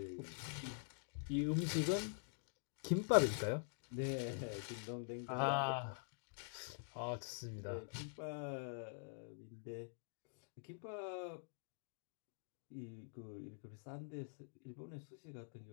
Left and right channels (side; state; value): right; silent; digital silence